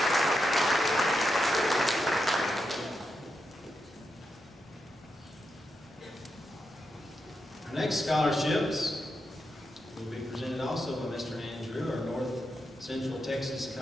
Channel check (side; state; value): both; normal; correlation 0.85